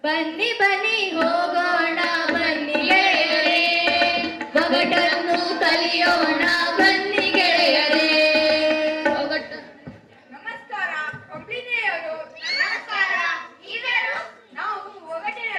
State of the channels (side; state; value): both; identical; correlation 1.00